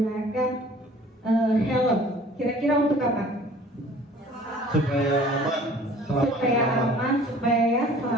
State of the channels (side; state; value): both; normal; correlation 0.50